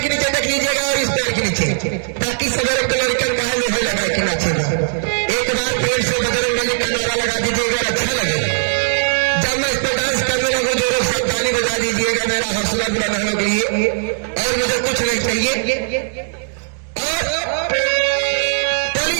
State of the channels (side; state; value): left; silent; digital silence